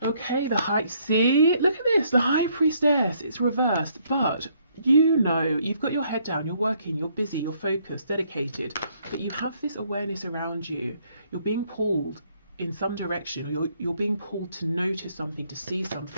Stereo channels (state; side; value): inverted; both; correlation -0.68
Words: Okay, the High, see, look at this, the High Priestess, it's reversed, but you know, you've got your head down, you're working, you're busy, you're focused, dedicated, but you have this awareness around you. You're being pulled in some direction, or you're being pulled to notice something, to see